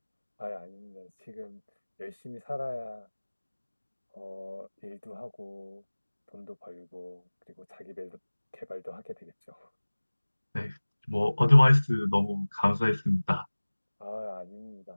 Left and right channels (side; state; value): both; inverted; correlation -1.00